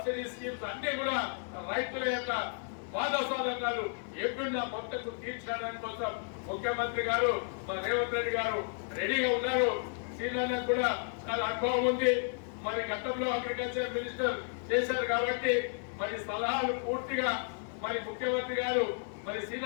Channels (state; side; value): silent; right; 56 dB below the other